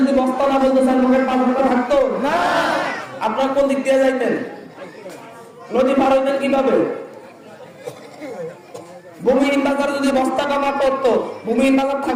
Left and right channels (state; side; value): identical; both; correlation 1.00